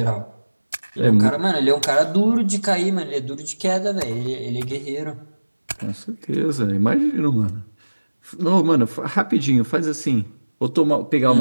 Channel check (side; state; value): both; inverted; correlation -1.00